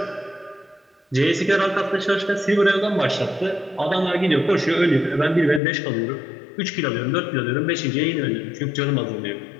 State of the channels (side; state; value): right; drops out; at 5.6 s